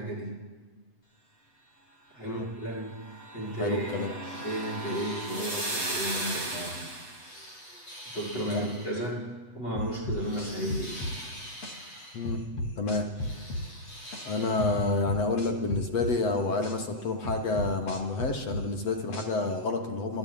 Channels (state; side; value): late; right; 8.0 ms